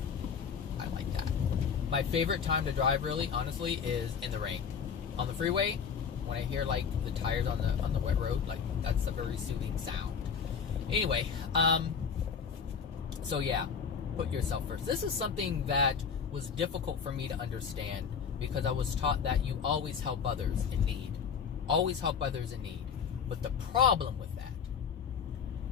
I like that. My favorite time to drive, really, honestly, is in the rain. On the freeway, when I hear like the tires on the wet road, like that's a very soothing sound. Anyway, so yeah, put yourself first. This is something that was difficult for me to understand because I was taught that you always help others in need. Always help others in need. But the problem with that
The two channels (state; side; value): quieter; right; 6.6 dB